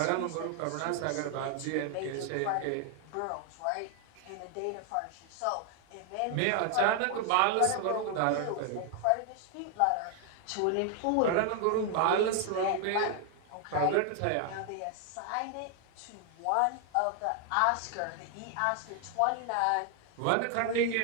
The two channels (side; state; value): both; different; correlation 0.00